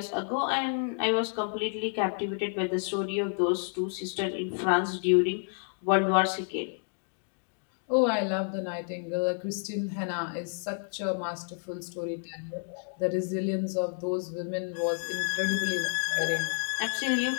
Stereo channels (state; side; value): silent; right; 58 dB below the other